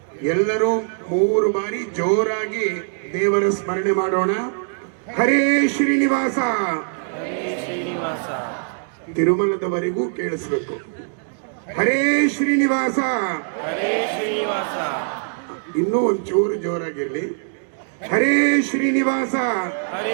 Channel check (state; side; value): silent; left; digital silence